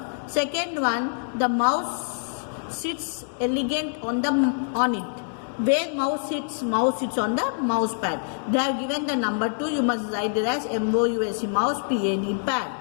Second one, the mouse sits elegant on it. Where mouse sits on the mouse pad. They have given the number 2, you must write it as MOUSE, mouse PAD pad.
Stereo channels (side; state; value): right; silent; digital silence